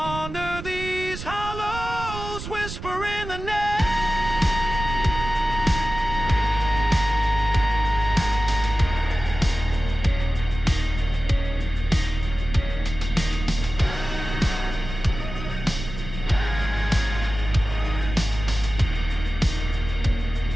these hollows, whispering the name.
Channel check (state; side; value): noise; right; rumble, 10 dB below the sound